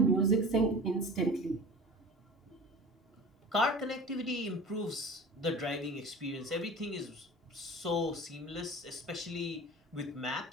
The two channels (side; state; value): both; normal; correlation 0.38